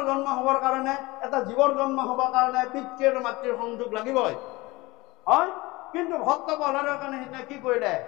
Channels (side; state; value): right; quieter; 21.8 dB